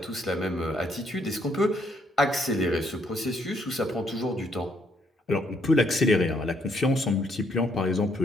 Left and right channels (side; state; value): both; normal; correlation 0.71